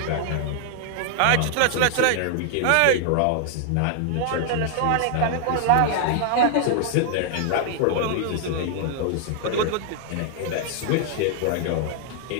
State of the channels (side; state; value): both; different; correlation 0.00